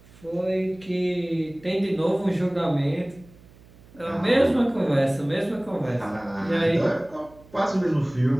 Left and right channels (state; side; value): noise; right; hum, 25 dB below the sound